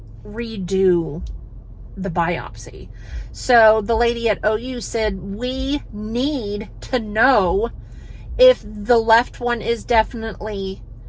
redo the biopsy. So the lady at OU said, we need to know if the left one is definitely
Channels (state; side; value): identical; both; correlation 1.00